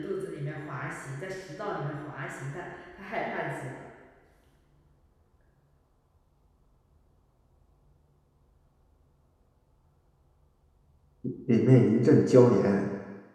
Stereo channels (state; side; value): identical; both; correlation 1.00